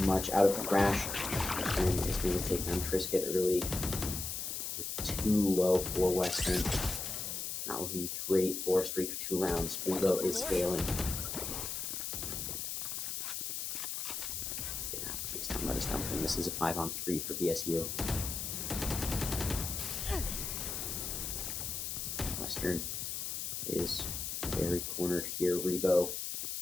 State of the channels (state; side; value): noise; left; hiss, 4 dB below the sound